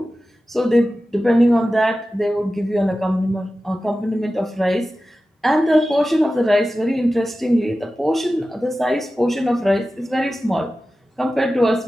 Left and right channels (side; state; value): both; normal; correlation 0.94